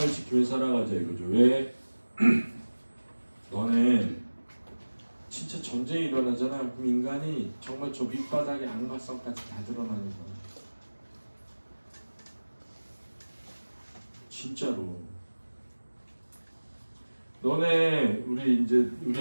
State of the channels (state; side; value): inverted; both; correlation -1.00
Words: 지키며 살아가자 이거죠. 왜? 너네 진짜 전쟁이 일어나잖아. 그럼 인간이 정말 저 밑바닥에 악마성까지 다 드러나는 거야. 진짜로. 너네 우리